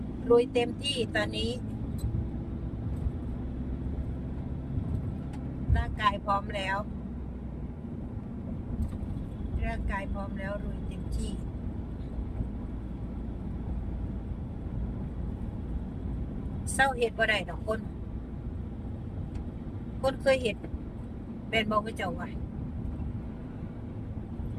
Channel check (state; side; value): identical; both; correlation 1.00